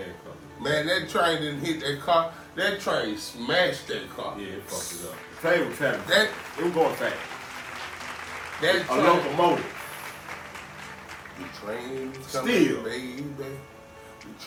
Man, that train didn't hit that car. That train smashed that car. Yeah, it fucked it up. The train was traveling. It was going fast. That a locomotive. The train is coming, steel. Baby. The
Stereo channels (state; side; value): identical; both; correlation 1.00